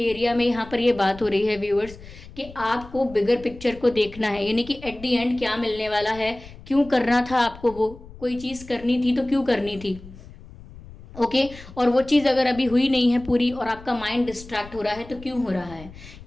में यहाँ पर ये बात हो रही है व्यूअर्स कि आपको बिगर पिक्चर को देखना है, यानी कि एट दी एंड क्या मिलने वाला है, क्यों करना था आपको, वो कोई चीज़ करनी थी तो क्यों करनी थी। ओके, और वो चीज़ अगर अभी हुई नहीं है पूरी और आपका माइंड डिस्ट्रैक्ट हो रहा है तो क्यों हो रहा है,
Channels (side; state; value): left; noise; rumble, 18 dB below the sound